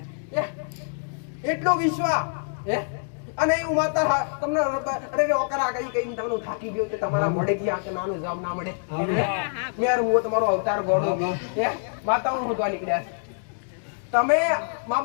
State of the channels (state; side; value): silent; right; digital silence